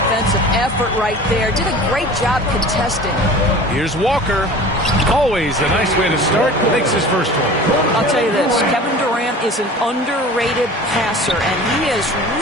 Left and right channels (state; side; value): normal; both; correlation 0.41